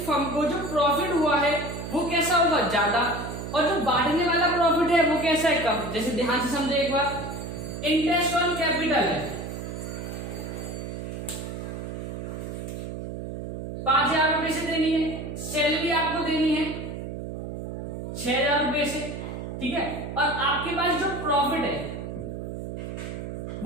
फर्म को जो प्रॉफिट हुआ है वो कैसा होगा? ज्यादा, और जो बांटने वाला प्रॉफिट है वो कैसा है? कम। जैसे ध्यान से समझे एक बार, इंटरेस्ट ऑन कैपिटल है 5,000 रुपए से देनी है, सैलरी आपको देनी है 6,000 रुपए से, ठीक है, और आपके पास जो प्रॉफिट है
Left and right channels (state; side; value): noise; right; hum, 7 dB below the sound